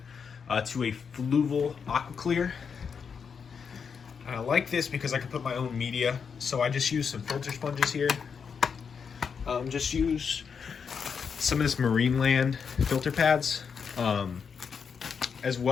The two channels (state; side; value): quieter; right; 6.3 dB